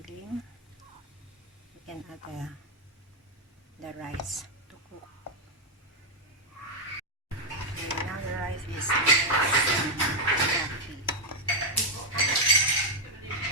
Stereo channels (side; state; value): both; normal; correlation 0.02